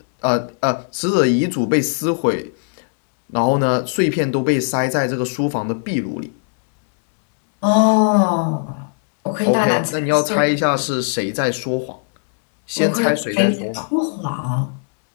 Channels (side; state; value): right; silent; digital silence